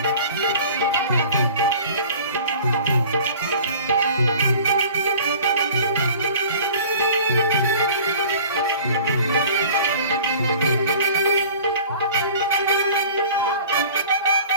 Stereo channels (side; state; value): both; inverted; correlation -0.45